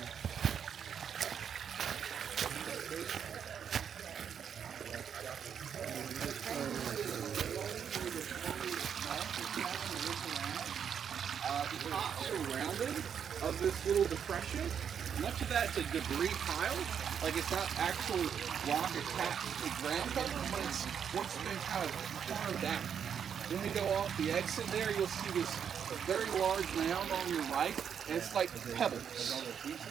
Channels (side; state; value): left; quieter; 7.8 dB